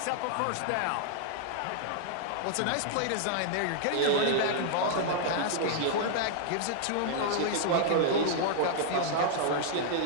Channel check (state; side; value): different; both; correlation -0.01